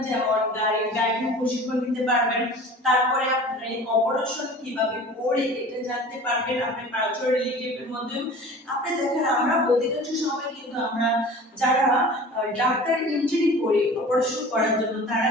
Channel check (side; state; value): both; normal; correlation 0.41